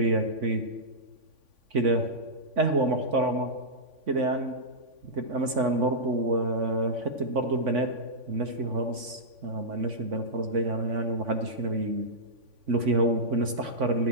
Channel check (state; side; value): late; left; 3.5 ms